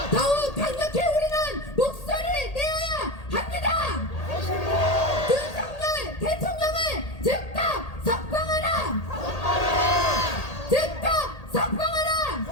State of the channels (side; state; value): right; late; 1.8 ms